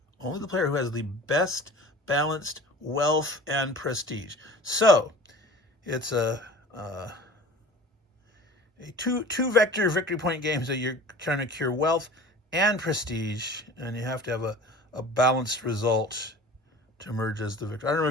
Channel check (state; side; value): normal; both; correlation 0.41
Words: the player who has the best balanced wealth and prestige. So it's a two vector victory point games that you're trying to cure wealth and prestige, and you have to have a balanced result to emerge as the victor. I don't know